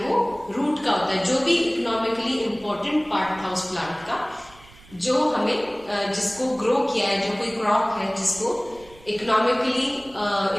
रूट का होता है, जो भी इकोनॉमिकली इंपॉर्टेंट पार्ट था उस प्लांट का, जो हमें जिसको ग्रो किया है, जो कोई क्रॉप है जिसको इकोनॉमिकली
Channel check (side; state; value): right; noise; rumble, 24 dB below the sound